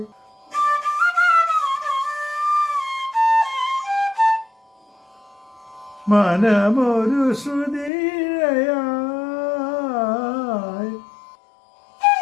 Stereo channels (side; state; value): right; drops out; at 7.9 s